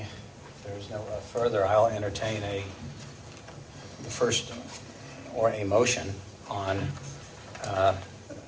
there's no further, I'll entertain the first, or a motion on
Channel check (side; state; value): both; identical; correlation 1.00